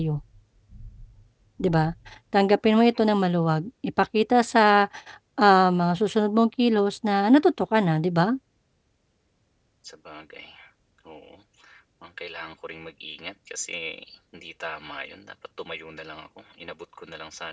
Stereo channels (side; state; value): both; identical; correlation 1.00